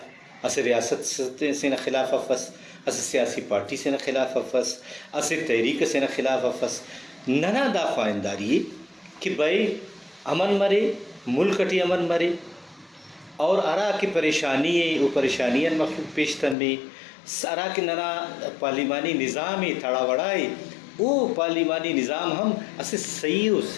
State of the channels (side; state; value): right; drops out; at 16.6 s